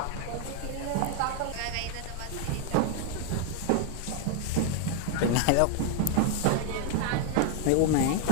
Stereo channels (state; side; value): different; both; correlation 0.00